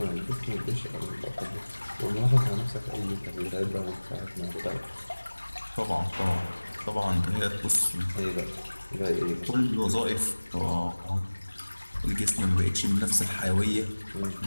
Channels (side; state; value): both; inverted; correlation -1.00